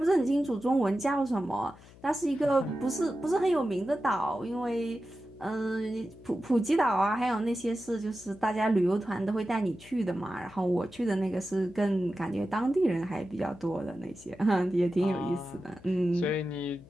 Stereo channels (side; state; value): left; noise; hum, 22 dB below the sound